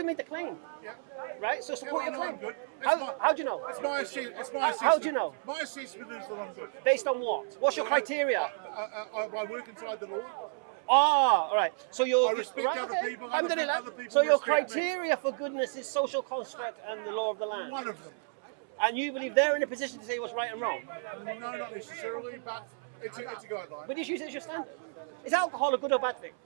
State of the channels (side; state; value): left; silent; 57 dB below the other